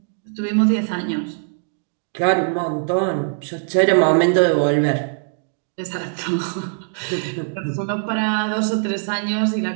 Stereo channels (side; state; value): left; silent; 61 dB below the other